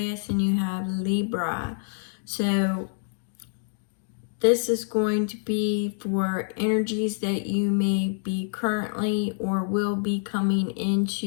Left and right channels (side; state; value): right; silent; digital silence